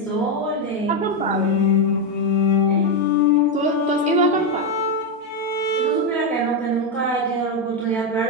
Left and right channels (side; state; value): both; normal; correlation 0.06